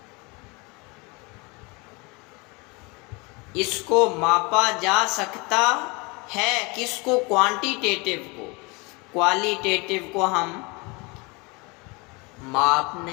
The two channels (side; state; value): right; quieter; 27.6 dB